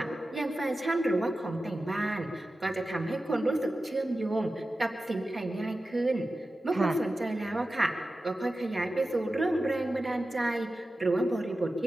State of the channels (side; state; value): both; normal; correlation 0.94